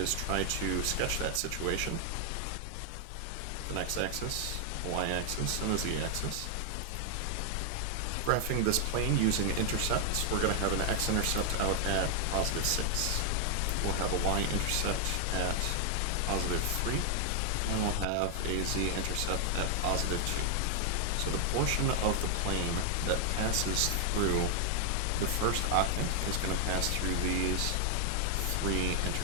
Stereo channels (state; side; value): different; both; correlation 0.00